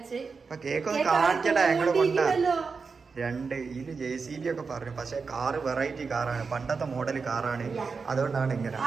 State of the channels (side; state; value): left; quieter; 5.0 dB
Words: ഇപ്പൊ കേക്ക് ഒന്ന് കാണിക്കട്ടെ. ഞങ്ങള് കൊണ്ടാ രണ്ട് ഇതില് JCB ഒക്കെ പറഞ്ഞു. പക്ഷെ കാറ് വെറൈറ്റി കാറാണ്, പണ്ടത്തെ മോഡൽ കാറാണ്. അതുകൊണ്ടാണ് ഇങ്ങനെ